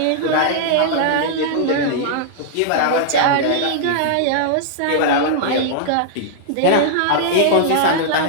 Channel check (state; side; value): different; both; correlation -0.01